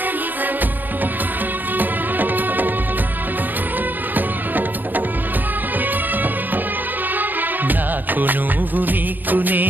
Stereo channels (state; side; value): late; left; 0.088 ms